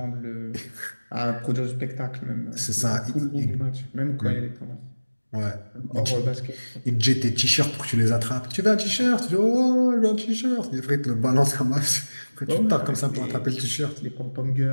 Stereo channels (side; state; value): both; inverted; correlation -1.00